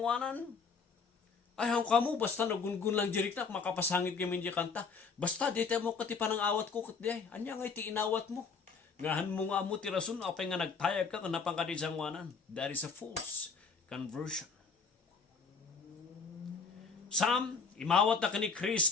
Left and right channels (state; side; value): quieter; right; 5.3 dB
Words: Ay hang kamo, basta nagungun lang jirik na, makapasangit kami di kanta. Basta di tayo mo kati panang awat ko kat di ay, anya ngay ti inawat mo. Ngahan mo nga mo tirasun, apay nga nagtayag ka, kanapang ka di sangwanan. That is a false conversion. Some, imawat na ka ni